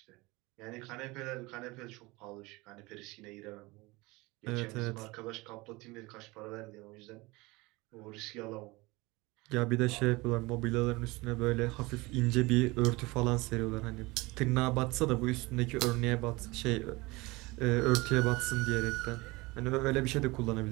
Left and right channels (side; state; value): left; quieter; 23.0 dB